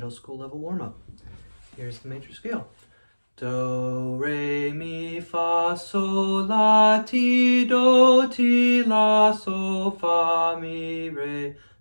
school level warm-up. Here's the major scale. Do, re, mi, fa, sol, la, ti, do, ti, la, sol, fa, mi, re,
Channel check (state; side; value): inverted; both; correlation -1.00